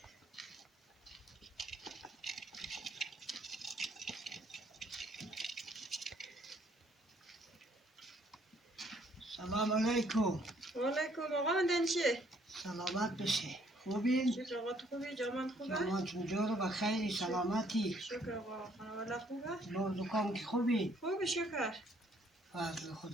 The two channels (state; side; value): normal; both; correlation 0.65